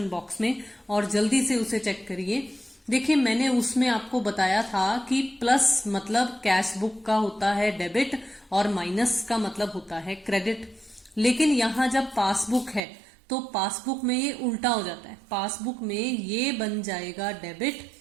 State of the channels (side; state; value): left; drops out; at 12.8 s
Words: बॉक्स में और जल्दी से उसे चेक करिए। देखिए मैंने उसमें आपको बताया था कि प्लस मतलब कैश बुक का होता है डेबिट और माइनस का मतलब होता है क्रेडिट। लेकिन यहाँ जब पासबुक है तो पासबुक में ये उल्टा हो जाता है। पासबुक में ये बन जाएगा डेबिट